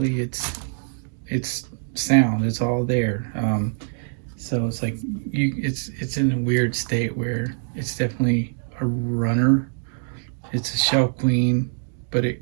it's sound. It's all there. So it's like it's in a weird state where it's definitely a runner. It's a shelf queen, but it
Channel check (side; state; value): left; silent; digital silence